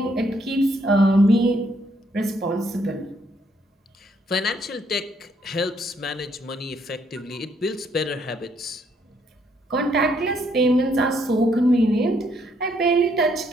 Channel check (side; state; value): both; normal; correlation 0.71